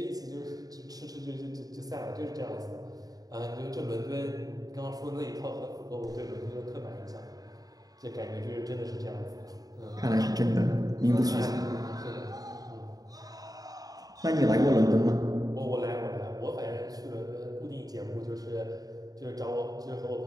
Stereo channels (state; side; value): late; left; 0.18 ms